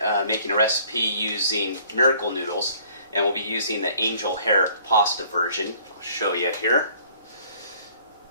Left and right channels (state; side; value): inverted; both; correlation -0.57